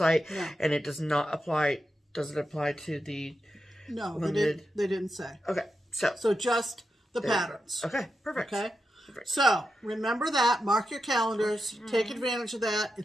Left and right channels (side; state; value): both; normal; correlation 0.88